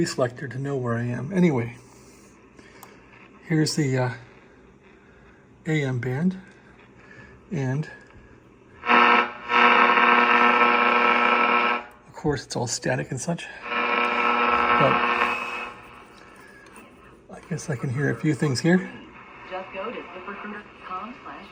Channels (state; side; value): identical; both; correlation 1.00